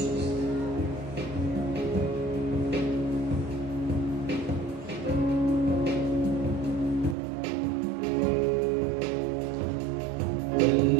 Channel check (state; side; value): drops out; left; at 7.2 s